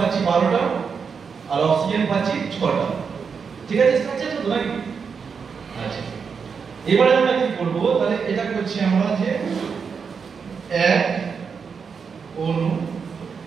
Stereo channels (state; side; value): quieter; left; 5.9 dB